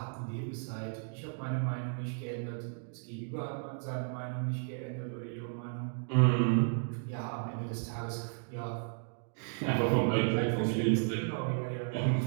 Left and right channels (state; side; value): silent; left; digital silence